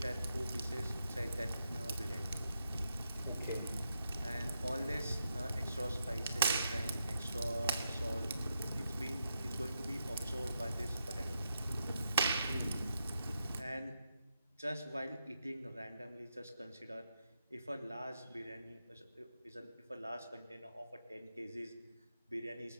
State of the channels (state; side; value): inverted; both; correlation -0.84